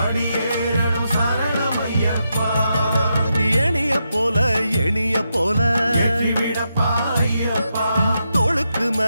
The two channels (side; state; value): both; inverted; correlation -0.84